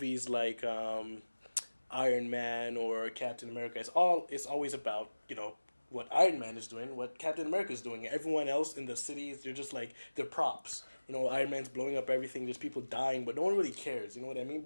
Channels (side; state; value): both; inverted; correlation -1.00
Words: like Iron Man or Captain America, it's always about what Iron Man is doing, what Captain America is doing. Everyone else in the cities, they're just like they're props. Iron Man's blowing up everything. There's people dying, but no one really cares. You know what I mean?